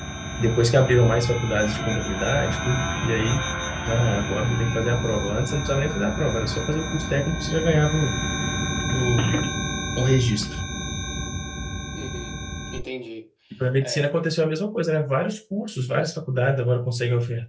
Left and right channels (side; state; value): both; identical; correlation 1.00